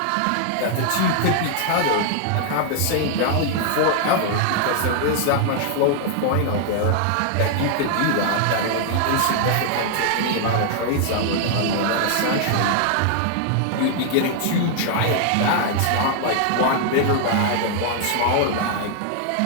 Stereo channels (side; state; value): both; different; correlation 0.00